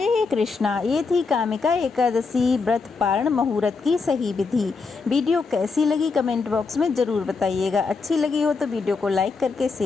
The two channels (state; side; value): quieter; right; 4.5 dB